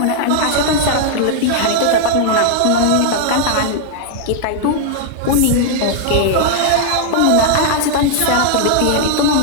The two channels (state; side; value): different; both; correlation -0.01